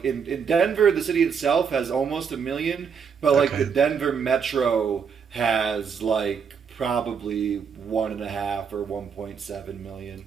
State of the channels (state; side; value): quieter; left; 6.5 dB